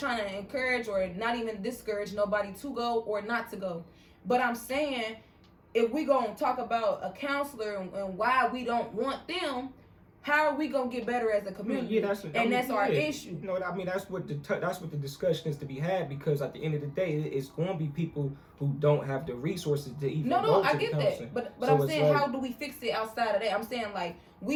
to encourage or not even discourage nobody to go or not to go. But I'm saying, if we gonna talk about a counselor and why we don't want them, how are we gonna get better as a community? Yeah, that's our issue. You know, I mean, that's what the discussion is to be had, because at the end of the day, it's going to be people who don't have the resources to even go to I get counseling. that, but so I'm saying, like, how do we fix it outside of that? I'm saying, like,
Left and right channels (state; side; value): identical; both; correlation 1.00